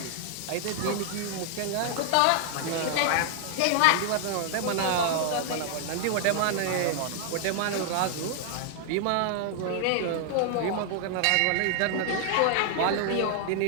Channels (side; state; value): both; different; correlation 0.00